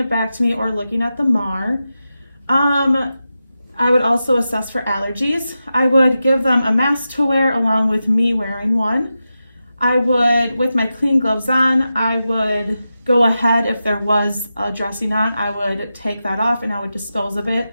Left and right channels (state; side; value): inverted; both; correlation -0.90